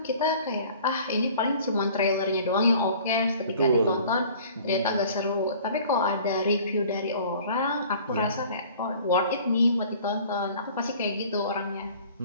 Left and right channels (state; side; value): inverted; both; correlation -0.49